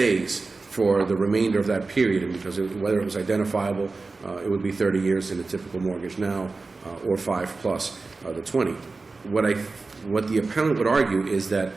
for the remainder of that period, and because whether it was identifiable, it would be 30 years in a typical mortgage now, or 5 plus the 20. What the appellant would argue is that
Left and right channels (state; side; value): quieter; left; 3.8 dB